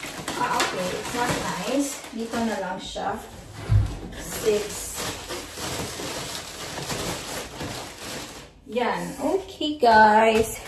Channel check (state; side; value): identical; both; correlation 1.00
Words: Okay, it's not nice. Dito na lang siya. 6. Yan. Okay, guys.